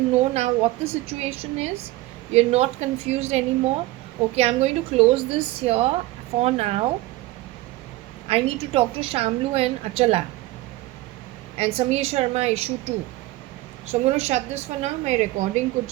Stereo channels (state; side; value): quieter; left; 18.5 dB